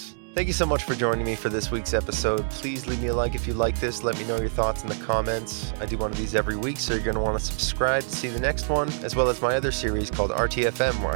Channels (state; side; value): silent; left; digital silence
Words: Thank you so much for joining me for this week's episode. Please leave me a like if you like this. Let me know your thoughts in the comments. I do one of these every week, so you're going to want to subscribe to see the next one, as well as my other series called RTFM, where